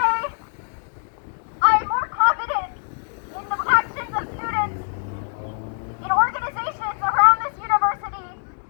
I am more confident in the actions of students in organizations around this university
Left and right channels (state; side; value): silent; right; 63 dB below the other